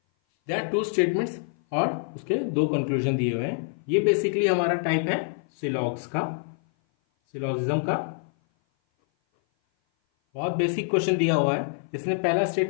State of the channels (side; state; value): right; silent; 57 dB below the other